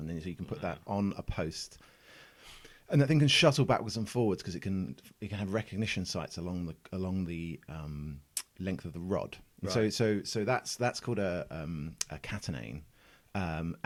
then so you can put that on a post, and that thing can shuttle backwards and forwards because it can have recognition sites along the length of the rod. Right. So that's called a catenane,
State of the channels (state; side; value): identical; both; correlation 1.00